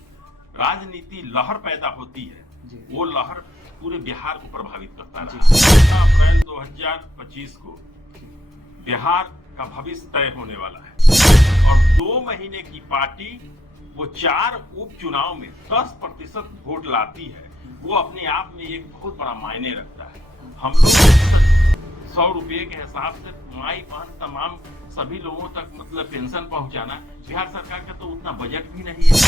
राजनीति लहर पैदा होती है वो लहर पूरे बिहार को प्रभावित करता रहा। 15 अप्रैल 2025 को बिहार का भविष्य तय होने वाला है और 2 महीने की पार्टी वो 4 उपचुनाव में 10% वोट लाती है, वो अपने आप में एक बहुत बड़ा मायने रखता है। हम लोग 100 रुपए के हिसाब से माई बहन तमाम सभी लोगों तक मतलब पेंशन पहुंचाना, बिहार सरकार का तो उतना बजट भी नहीं है।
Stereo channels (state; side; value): normal; both; correlation 0.79